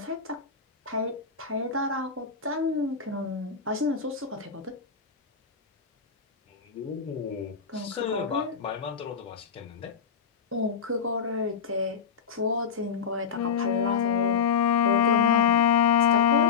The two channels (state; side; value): quieter; right; 6.6 dB